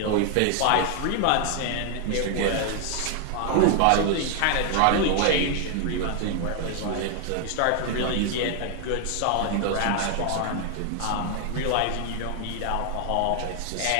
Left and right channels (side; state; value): both; different; correlation 0.00